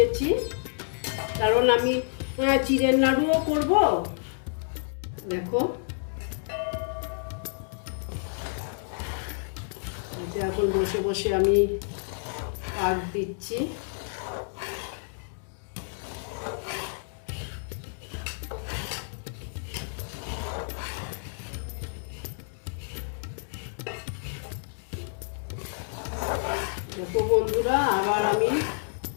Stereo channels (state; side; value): silent; right; digital silence